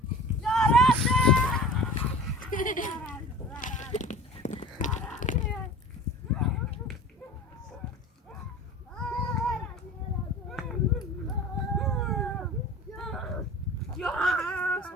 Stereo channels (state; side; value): normal; both; correlation 0.39